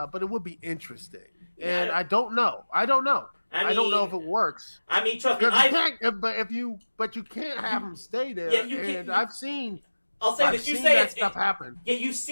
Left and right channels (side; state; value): both; inverted; correlation -1.00